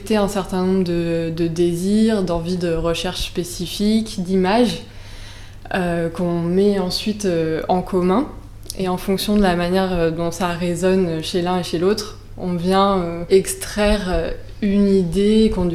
un certain nombre de désirs, d'envies de recherche spécifiques, d'images qu'on met ensuite en commun. Et en fonction de la manière dont ça résonne chez l'un et chez l'autre, on vient extraire une idée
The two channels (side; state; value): both; identical; correlation 1.00